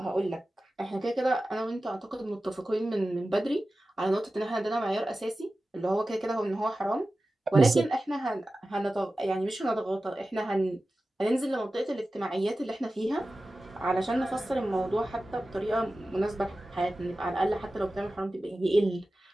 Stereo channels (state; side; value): normal; both; correlation 0.95